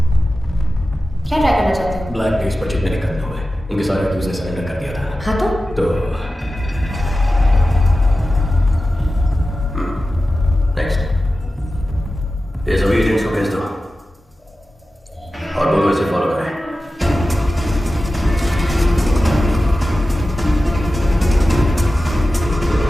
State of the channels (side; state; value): both; normal; correlation 0.94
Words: क्या ट्राई करना चाहते हो? ब्लैक डेज पर जितने निकलने हुए उनके सारे अक्यूज ने सरेंडर कर दिया था। हाँ तो नेक्स्ट। ये सभी एजेंट्स को भेज दो और दोनों इसे फॉलो करें।